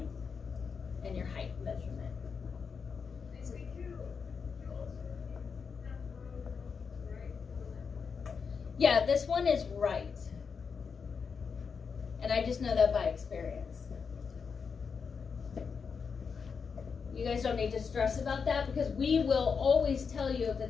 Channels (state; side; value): quieter; right; 5.8 dB